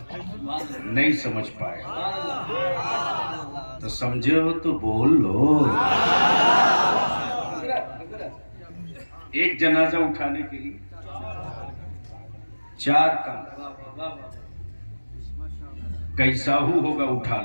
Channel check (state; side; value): inverted; both; correlation -1.00